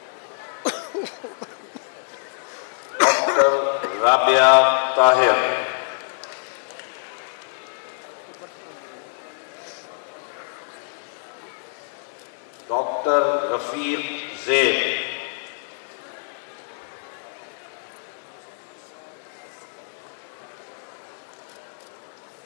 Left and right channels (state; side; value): silent; right; digital silence